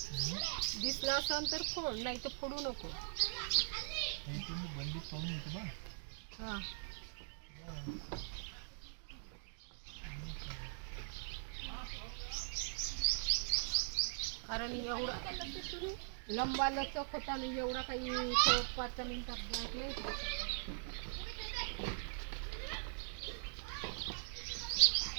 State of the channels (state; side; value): silent; left; digital silence